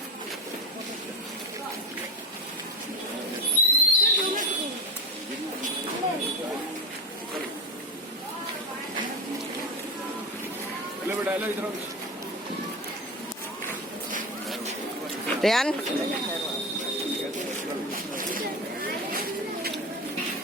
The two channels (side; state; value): both; normal; correlation 0.20